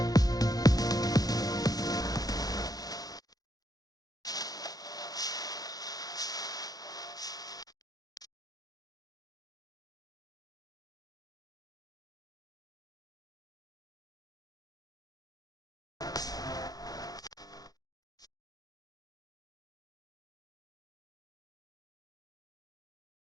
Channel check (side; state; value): right; late; 0.18 ms